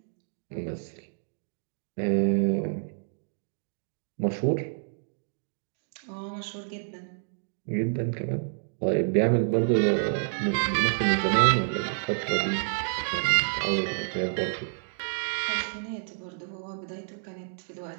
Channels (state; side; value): silent; left; digital silence